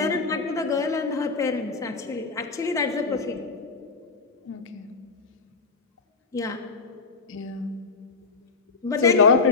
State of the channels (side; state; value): right; quieter; 4.4 dB